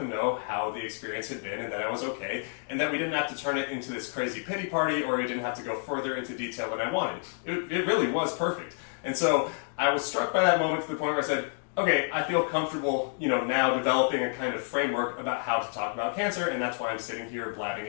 know how the experience had been and that I was okay, and that we didn't have to turn it into this crazy pity party, or we didn't have to go further into detail than I wanted. It really was perfect. And so I was struck by that moment to the point where I said, okay, I feel comfortable, now developing a kind of framework about how to talk about cancer, and that's why I'm sitting here blabbing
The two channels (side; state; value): right; silent; 58 dB below the other